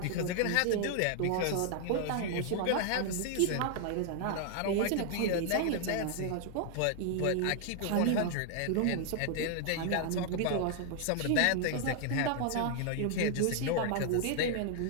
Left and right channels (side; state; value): both; different; correlation 0.00